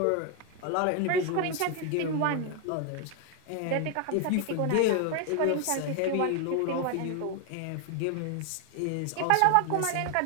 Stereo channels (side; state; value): both; different; correlation 0.01